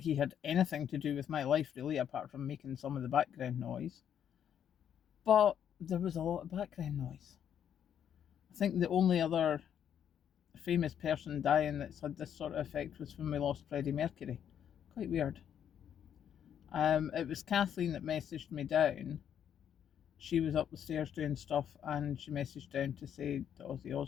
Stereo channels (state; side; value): quieter; right; 9.1 dB